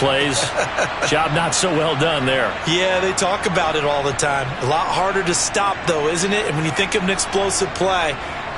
Job not so well done there. Yeah, they talk about it all the time. A lot harder to stop, though, isn't it? And when you think of an explosive play,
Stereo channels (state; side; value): identical; both; correlation 1.00